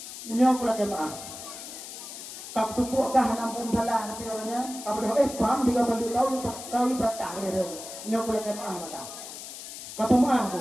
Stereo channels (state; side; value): noise; left; hiss, 11 dB below the sound